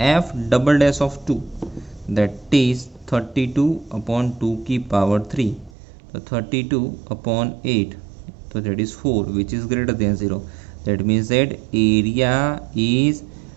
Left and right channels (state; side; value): drops out; left; at 5.7 s